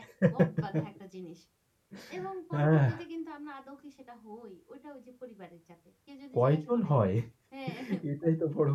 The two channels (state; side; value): identical; both; correlation 1.00